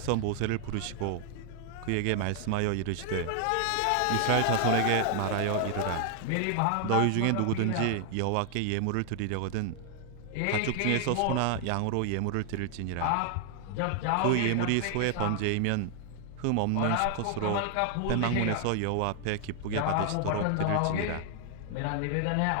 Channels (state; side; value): different; both; correlation 0.00